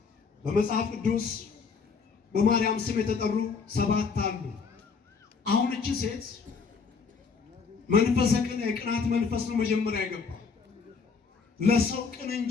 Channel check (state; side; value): quieter; right; 5.3 dB